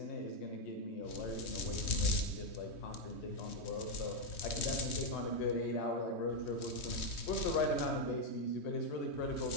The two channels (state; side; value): late; right; 3.2 ms